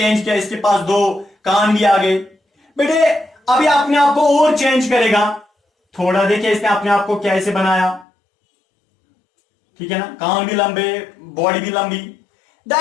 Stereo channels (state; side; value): drops out; right; at 8.1 s